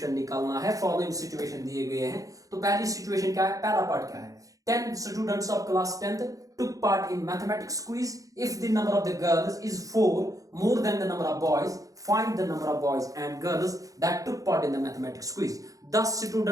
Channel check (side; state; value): left; late; 0.17 ms